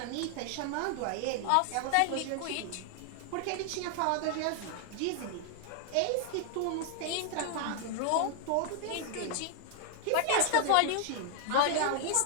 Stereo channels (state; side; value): different; both; correlation 0.00